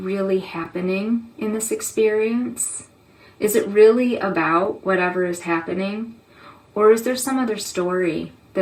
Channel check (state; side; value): identical; both; correlation 1.00